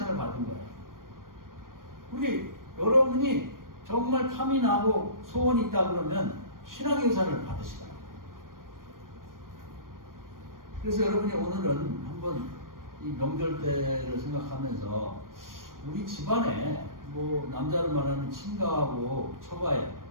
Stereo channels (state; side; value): late; left; 0.91 ms